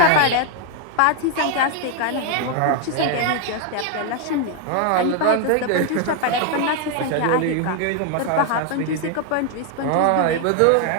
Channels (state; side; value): different; both; correlation 0.01